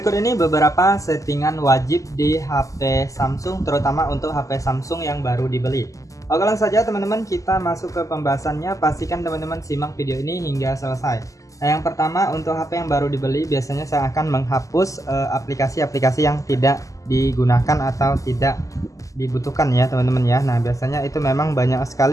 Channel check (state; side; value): late; right; 0.16 ms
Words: ini beberapa settingan wajib di HP Samsung, terutama untuk HP Samsung yang baru dibeli. Oke, langsung saja teman-teman kita masuk ke pembahasannya. Pastikan teman-teman simak video ini hingga selesai. Nah, yang pertama untuk HP yang baru dibeli biasanya saya akan menghapus aplikasi-aplikasi yang tidak digunakan atau tidak dibutuhkan ya teman-teman ya. Nah, biasanya itu memang banyak